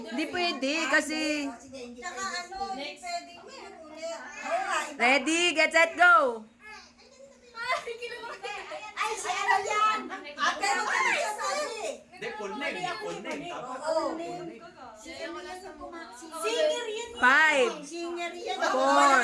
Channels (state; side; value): identical; both; correlation 1.00